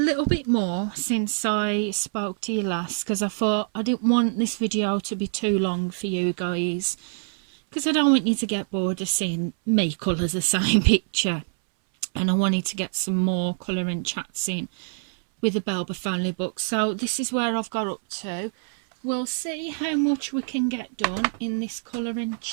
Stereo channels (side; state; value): left; silent; 61 dB below the other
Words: bit more since I spoke to you last, because I thought I didn't want this video to be too long for you guys, because I don't want you to get bored of seeing me colour the same picture, and I wanted to get some more colouring chats in with the Belba family book. So this is where I've got up to. We'll see how much we can get done in this colouring